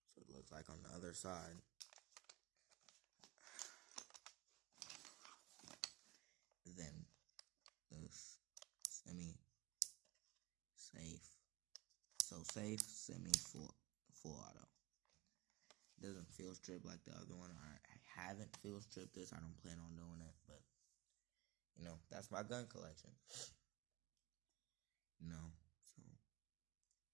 so it looks like on the other side. Then this semi-safe. So safe, semi-full auto. It doesn't field strip like the other one. I haven't field stripped this. I don't plan on doing it, but you know, that's my gun collection. You know, so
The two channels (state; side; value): quieter; left; 21.6 dB